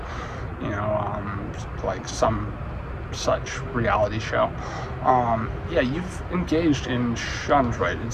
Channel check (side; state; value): both; identical; correlation 1.00